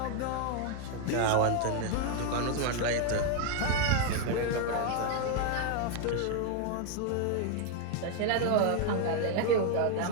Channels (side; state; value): both; different; correlation 0.01